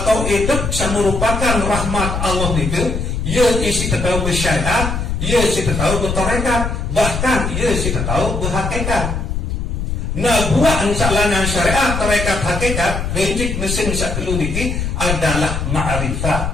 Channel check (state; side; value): noise; left; rumble, 3 dB below the sound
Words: hidup merupakan rahmat Allah niki. Ia isi tahu bersyariat, ia isi tahu bertarekat, bahkan ia isi tahu berhakikat. Nah, buat insyaAllah syariat, tarekat, hakikat, rejik mesin satu niki adalah